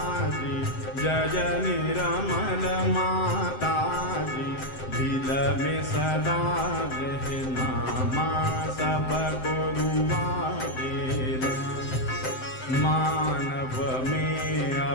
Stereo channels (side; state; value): right; late; 7.7 ms